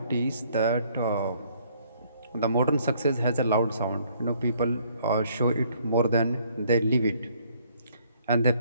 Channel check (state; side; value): inverted; both; correlation -0.64